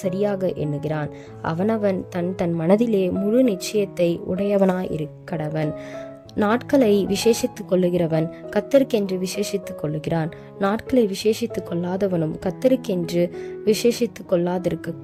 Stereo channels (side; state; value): both; identical; correlation 1.00